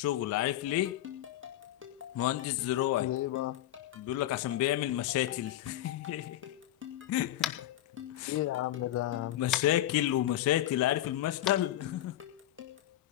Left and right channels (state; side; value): quieter; right; 13.4 dB